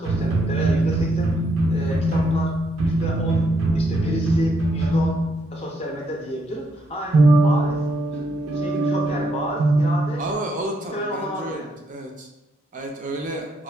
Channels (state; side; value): normal; both; correlation 0.76